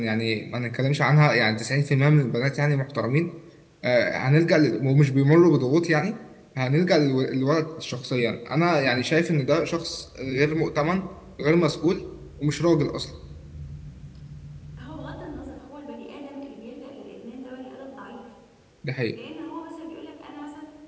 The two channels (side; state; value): both; identical; correlation 1.00